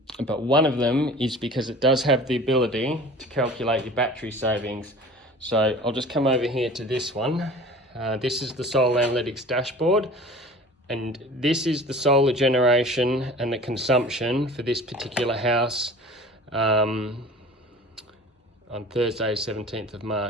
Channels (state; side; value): normal; both; correlation 0.42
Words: one of them is because it does have the ability to calculate your battery savings. So I'll just come over here to this one. This is the Solar Analytics dashboard. And this is the solar generation and the consumption for this particular house on Thursday, 17th of